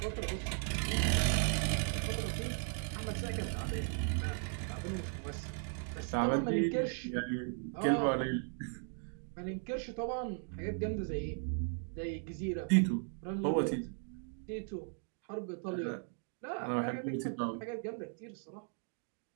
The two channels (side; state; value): left; silent; 53 dB below the other